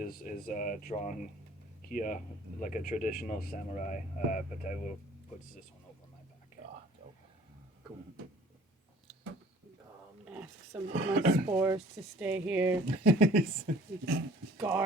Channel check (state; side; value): normal; both; correlation 0.52